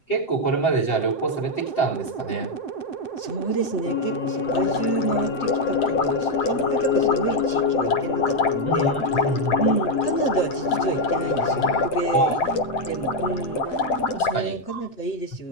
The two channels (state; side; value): late; right; 7.8 ms